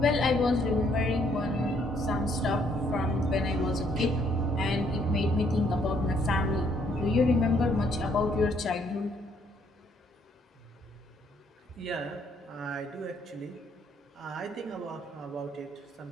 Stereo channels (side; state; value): both; normal; correlation 0.68